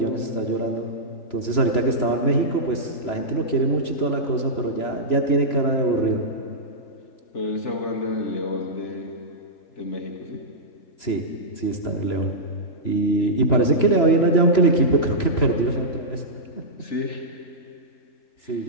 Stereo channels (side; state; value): right; late; 3.0 ms